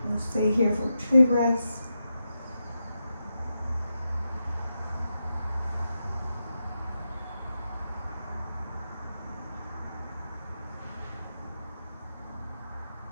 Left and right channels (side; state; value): both; inverted; correlation -0.88